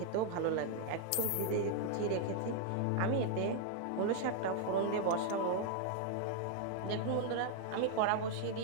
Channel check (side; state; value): both; different; correlation 0.00